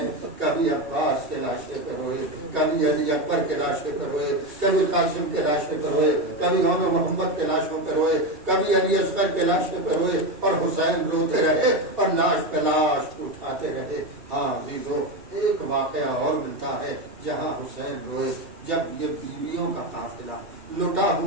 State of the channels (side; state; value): left; late; 2.7 ms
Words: کبھی عباس کے لاشے پہ روئے، کبھی علی اکبر کے لاشے پہ روئے، کبھی قاسم کے لاشے پہ روئے، کبھی عمر محمد کے لاشوں پہ روئے، کبھی علی اصغر کے لاشے پہ روئے، اور حسین روتے رہے اور لاش پہ لاش اٹھاتے رہے۔ ہاں عزیزو، ایک واقعہ اور ملتا ہے جہاں حسین روئے، جب یہ بیویوں کا قافلہ، لٹا